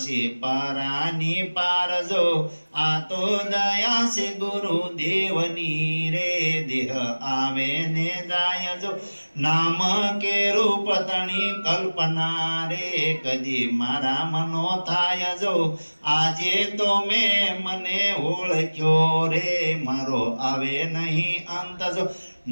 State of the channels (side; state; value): both; inverted; correlation -1.00